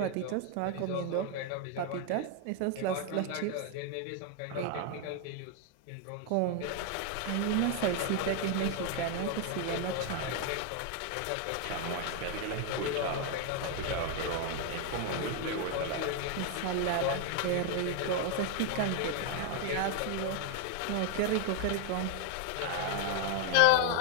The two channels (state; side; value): different; both; correlation 0.01